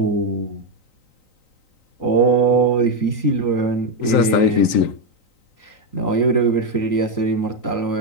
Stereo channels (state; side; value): late; right; 3.9 ms